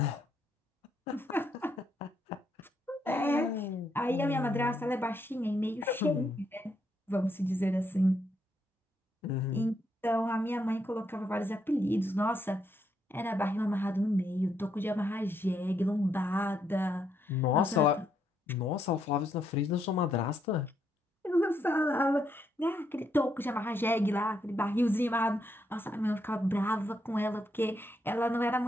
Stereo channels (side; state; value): both; normal; correlation 0.77